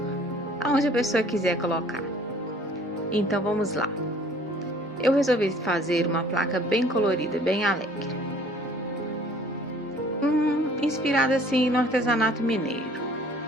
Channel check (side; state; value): both; normal; correlation 0.54